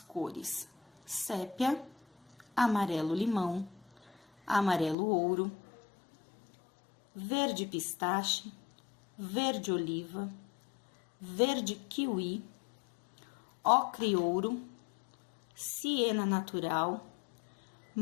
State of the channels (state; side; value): drops out; right; at 5.0 s